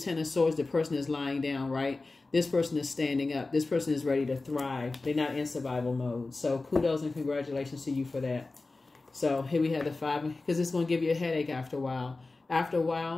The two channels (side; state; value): right; quieter; 3.4 dB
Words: of Swords, the person is lying down, right? This person is standing up. This person is ready to thrive. They're not in survival mode. So kudos and congratulations to you for that. So here we have the 5, because it's going to give you a headache after a while. After a